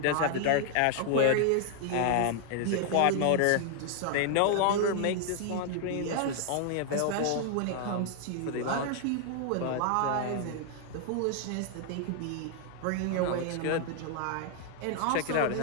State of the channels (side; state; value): both; different; correlation 0.00